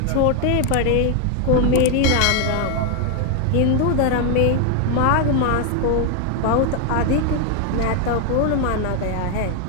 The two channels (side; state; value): both; different; correlation 0.00